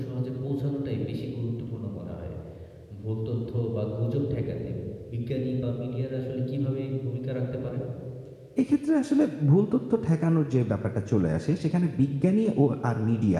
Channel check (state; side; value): identical; both; correlation 1.00